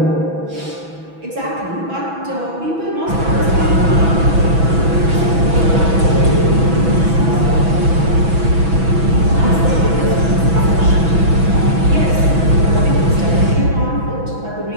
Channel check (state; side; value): late; left; 6.1 ms